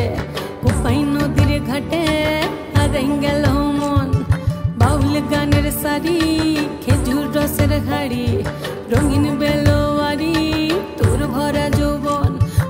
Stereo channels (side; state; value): both; identical; correlation 1.00